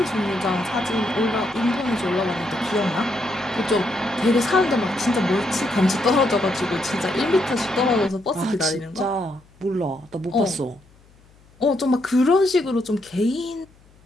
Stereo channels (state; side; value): noise; left; hum, 29 dB below the sound